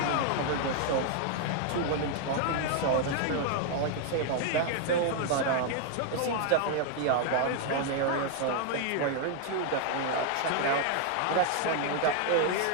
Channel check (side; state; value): both; different; correlation 0.00